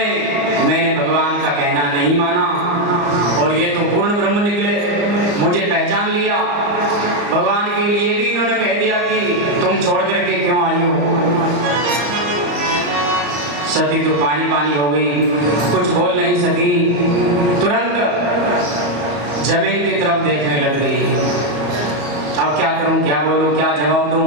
मैंने भगवान का कहना नहीं माना, और ये तो पूर्ण ब्रह्म निकले, मुझे पहचान लिया। भगवान के लिए भी इन्होंने कह दिया कि तुम छोड़ करके क्यों आई हो? सती तो पानी पानी हो गई, कुछ बोल नहीं सकी, तुरंत जमीन की तरफ देखने लग गई। अब क्या करूं, क्या बोलूं, क्या जवाब दूं,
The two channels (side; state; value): left; late; 34 ms